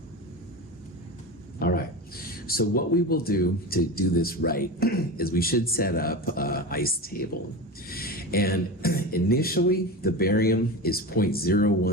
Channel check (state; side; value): normal; both; correlation 0.25